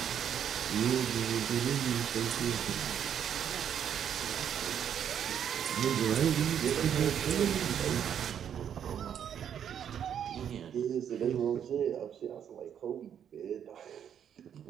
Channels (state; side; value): quieter; left; 8.9 dB